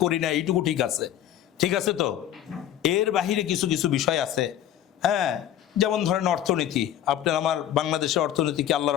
করি না, এইটুকু ঠিক আছে, ঠিক আছে তো। এর বাহিরে কিছু কিছু বিষয় আছে, হ্যাঁ, যেমন ধরেন অর্থনীতি। আপনার আমার বাংলাদেশের অর্থনীতি কি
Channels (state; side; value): quieter; right; 11.3 dB